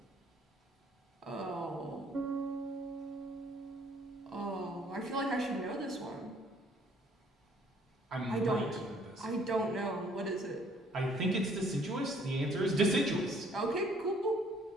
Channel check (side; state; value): both; normal; correlation 0.61